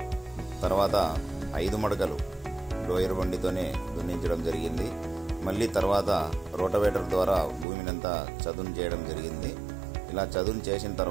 తర్వాత 5 మడకలు డోయర్ బండితోనే దున్నించడం జరిగింది. మళ్ళీ తర్వాత రోటవేటర్ ద్వారా భూమినంతా చదును చేయడం జరిగింది. ఇలా చదును చేసిన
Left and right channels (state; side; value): drops out; left; at 7.7 s